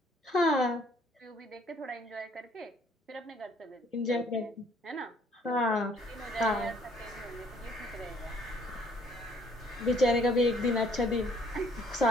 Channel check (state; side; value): normal; both; correlation 0.61